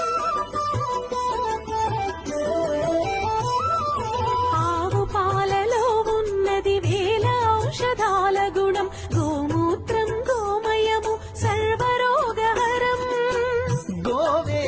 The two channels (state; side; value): identical; both; correlation 1.00